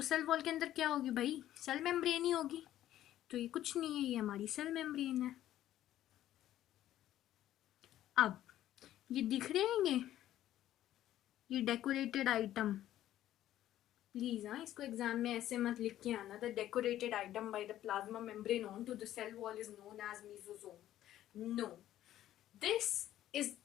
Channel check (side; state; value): right; quieter; 12.9 dB